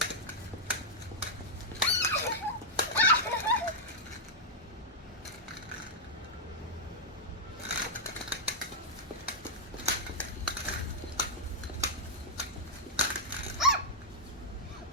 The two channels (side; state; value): both; normal; correlation -0.05